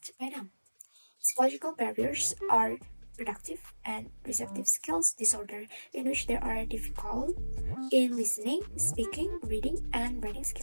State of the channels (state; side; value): inverted; both; correlation -1.00